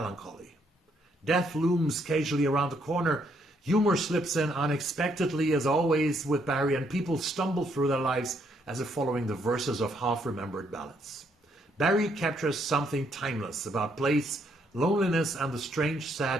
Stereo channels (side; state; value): both; normal; correlation 0.72